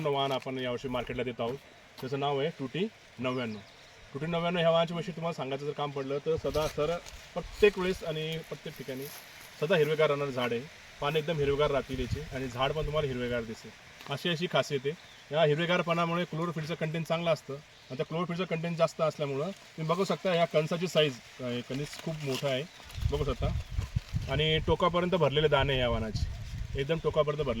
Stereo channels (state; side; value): identical; both; correlation 1.00